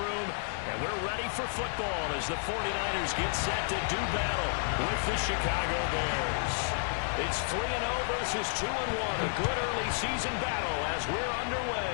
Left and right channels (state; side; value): silent; right; digital silence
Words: room. And we're ready for football as the 49ers get set to do battle with the Chicago Bears. It's 3-0 versus 2-1, a good early season battle as we're